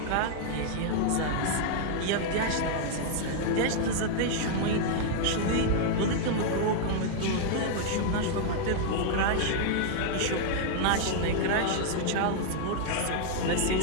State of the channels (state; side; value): different; both; correlation 0.00